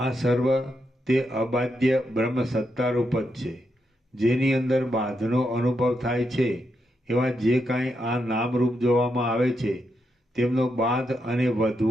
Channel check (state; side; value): normal; both; correlation 0.82